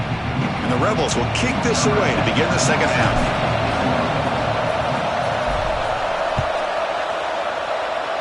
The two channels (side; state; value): both; identical; correlation 1.00